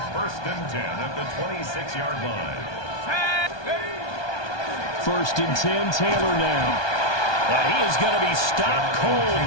First and 10 at the 26-yard line. First and 10, Taylor now. And he is going to be stopped cold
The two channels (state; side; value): late; right; 1.2 ms